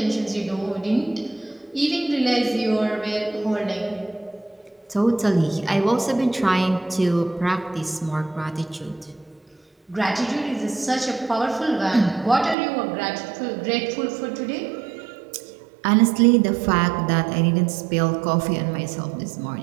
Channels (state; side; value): drops out; left; at 12.6 s